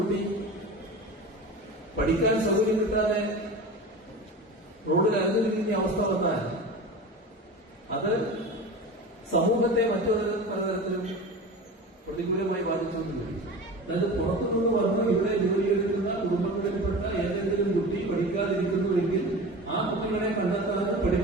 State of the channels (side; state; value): both; normal; correlation 0.32